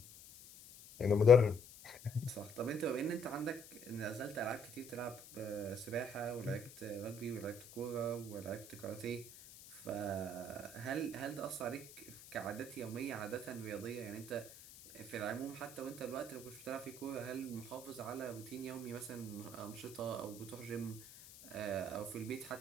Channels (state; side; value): noise; left; hiss, 17 dB below the sound